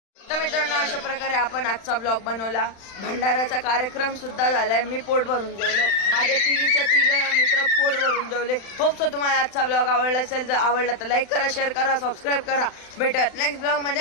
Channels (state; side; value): late; right; 35 ms